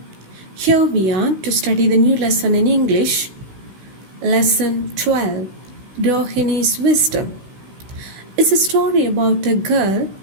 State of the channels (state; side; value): late; left; 16 ms